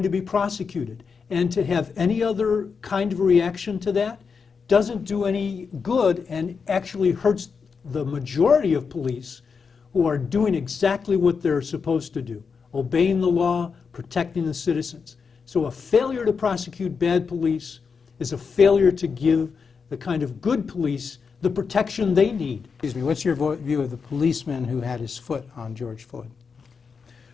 to be prosecuted. And to have any other kind of reaction to that doesn't do any good and actually hurts the majority of police who are doing exactly what they're supposed to do, obeying the law, protecting the citizens. So a failure to prosecute bad police is a failure to give the kind of good police the protection they need. Excuse me, what's your view of the policeman who had his foot on George Floyd?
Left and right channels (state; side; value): quieter; right; 5.6 dB